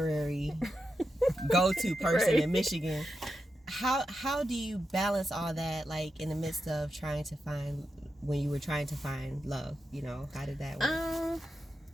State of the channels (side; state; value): both; normal; correlation 0.88